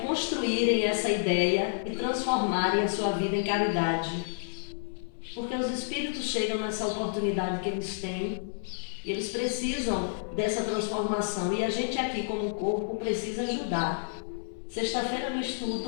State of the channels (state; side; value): silent; right; digital silence